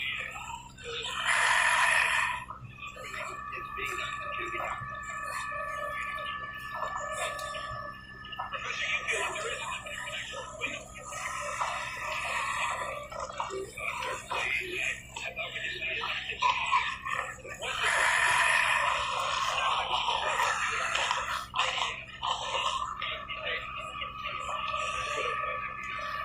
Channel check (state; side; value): identical; both; correlation 1.00